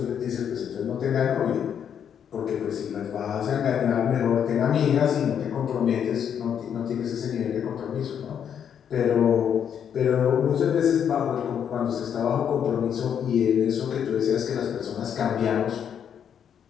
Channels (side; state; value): right; quieter; 8.4 dB